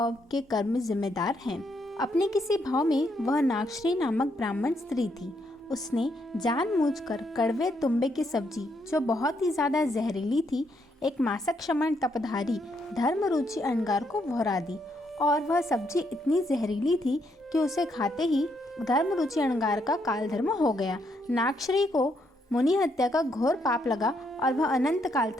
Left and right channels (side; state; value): both; normal; correlation 0.75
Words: के कर्म जिम्मेदार हैं। अपने किसी भाव में वह नागश्री नामक ब्राह्मण स्त्री थी। उसने जानबूझकर कड़वे तुम्बे की सब्जी, जो बहुत ही ज्यादा जहरीली थी, एक मासक क्षमण तपधारी धर्मरुचि अंगार को भोरा दी। और वह सब्जी इतनी जहरीली थी कि उसे खाते ही धर्मरुचि अंगार का कालधर्म हो गया। नागश्री को मुनि हत्या का घोर पाप लगा और वह अनंत काल